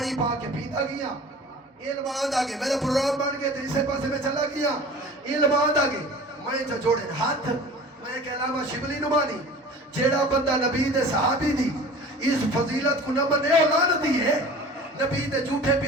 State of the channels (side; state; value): both; normal; correlation 0.41